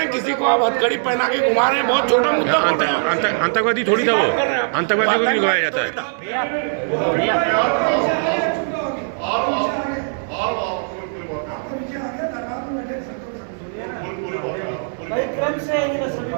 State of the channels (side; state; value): left; silent; digital silence